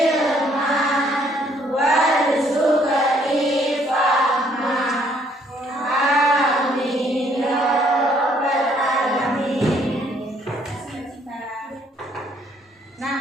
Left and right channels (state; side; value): normal; both; correlation 0.65